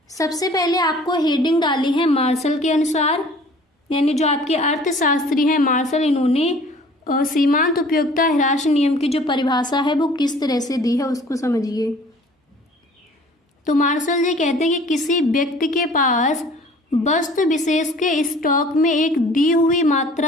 सबसे पहले आपको हेडिंग डाली है मार्शल के अनुसार, यानी जो आपके अर्थशास्त्री हैं मार्शल, इन्होंने सीमांत उपयोगिता ह्रास नियम की जो परिभाषा है वो किस तरह से दी है उसको समझिए। तो मार्शल जी कहते हैं कि किसी व्यक्ति के पास वस्तु विशेष के स्टॉक में एक दी हुई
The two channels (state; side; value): normal; both; correlation 0.50